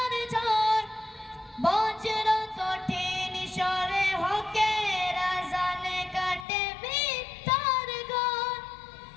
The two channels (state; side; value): drops out; right; at 6.5 s